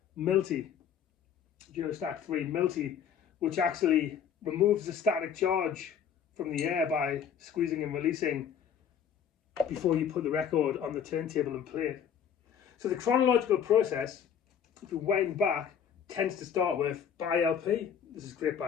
3 Multi, which actually removes the static charge from the air by squeezing and releasing before you put the record on the turntable and play it. So the chronological process, if you wind back, tends to start with buy LP. This is great,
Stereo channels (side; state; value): right; quieter; 8.0 dB